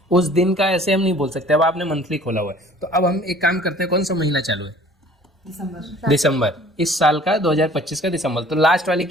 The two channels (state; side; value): normal; both; correlation 0.51